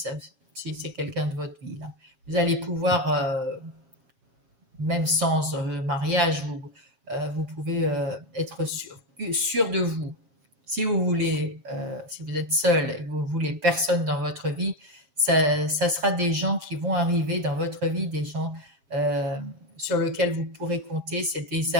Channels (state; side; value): late; left; 7.4 ms